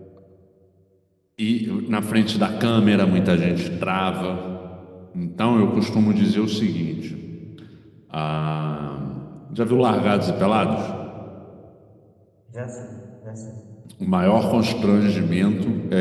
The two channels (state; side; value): identical; both; correlation 1.00